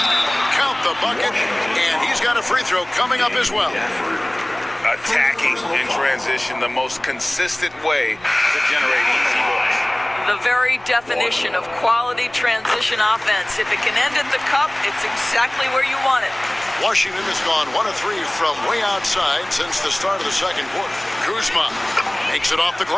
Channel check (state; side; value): noise; left; rumble, 29 dB below the sound